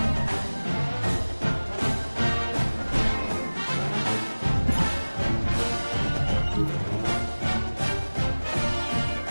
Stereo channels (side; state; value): both; inverted; correlation -1.00